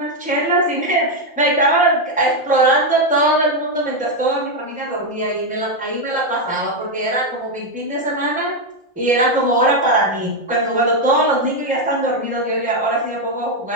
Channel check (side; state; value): both; normal; correlation 0.04